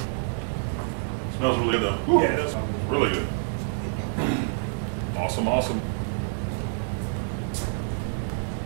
Smells really good though. Woo. Yeah, it does smell good. Really good. Awesome, awesome.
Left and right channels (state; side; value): silent; left; digital silence